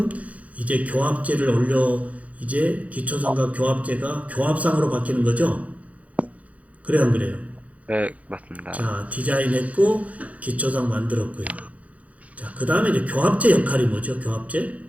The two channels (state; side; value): late; left; 0.068 ms